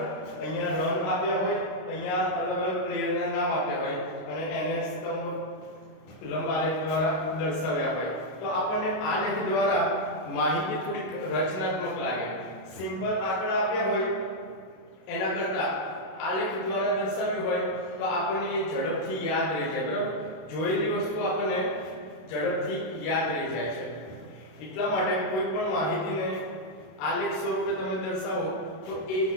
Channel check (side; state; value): right; late; 32 ms